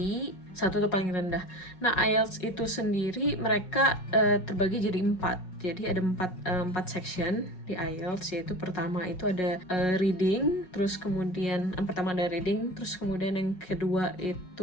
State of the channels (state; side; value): late; right; 5.5 ms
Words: 1 itu paling rendah. Nah, IELTS itu sendiri mereka terbagi jadi 4. Jadi ada 4 section di IELTS, yaitu pertama itu ada reading, terus kemudian yang pertama ada reading, terus kemudian yang kedua